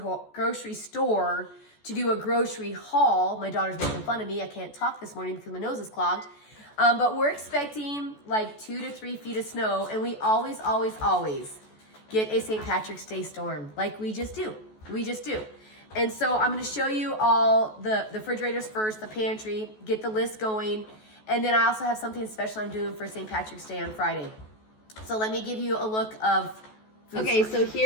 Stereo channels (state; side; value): late; right; 14 ms